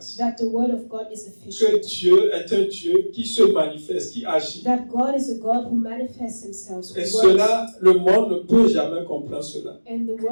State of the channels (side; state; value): both; inverted; correlation -1.00